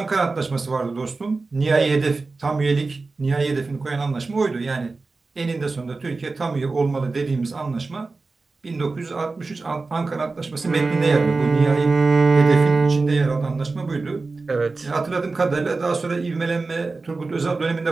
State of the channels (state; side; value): quieter; left; 3.8 dB